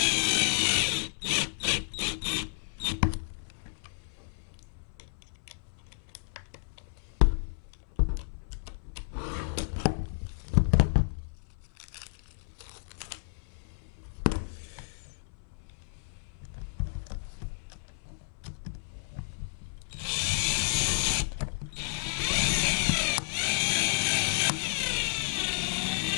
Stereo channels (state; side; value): silent; right; 57 dB below the other